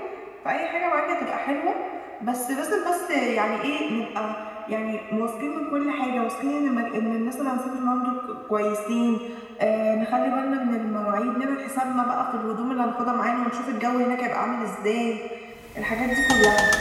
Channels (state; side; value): identical; both; correlation 1.00